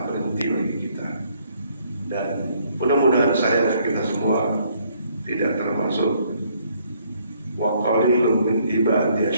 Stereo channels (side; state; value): both; inverted; correlation -0.67